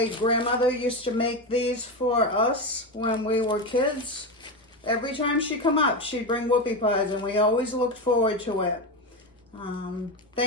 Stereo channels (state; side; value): normal; both; correlation 0.16